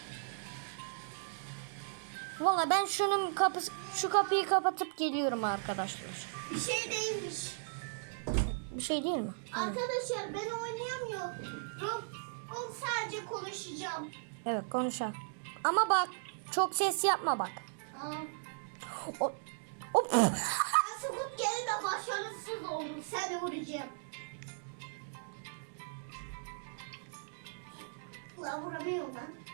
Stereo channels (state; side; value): silent; left; digital silence